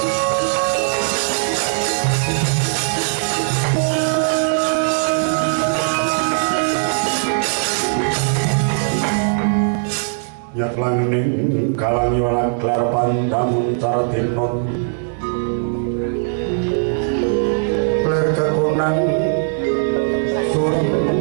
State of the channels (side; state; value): left; silent; 59 dB below the other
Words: Nyatlaning kalangi walang klar pandamun cardinon ler kekunang suring